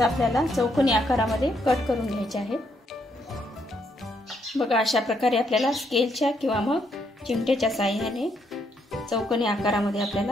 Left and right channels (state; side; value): normal; both; correlation 0.74